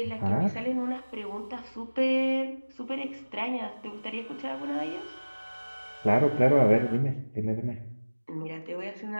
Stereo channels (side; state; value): both; inverted; correlation -1.00